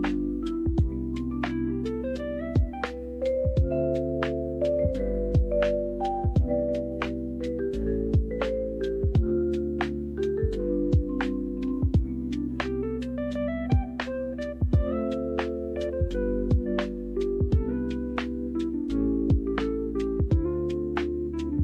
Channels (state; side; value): identical; both; correlation 1.00